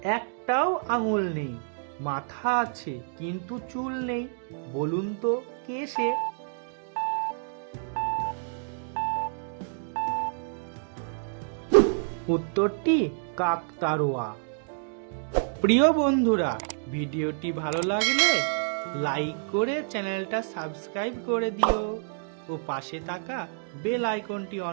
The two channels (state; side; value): silent; left; digital silence